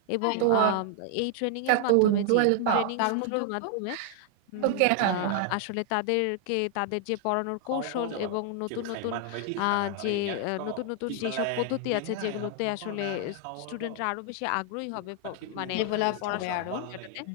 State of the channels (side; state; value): both; different; correlation 0.00